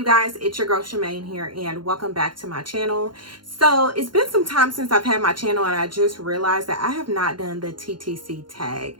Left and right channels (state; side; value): late; left; 0.72 ms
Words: guys? It's your girl Shamain here, and welcome back to my channel. So it's been some time since I've had my channel, and I just realized that I have not done the TTC tag.